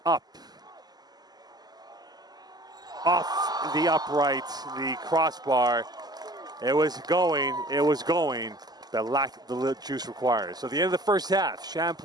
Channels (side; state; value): left; late; 0.20 ms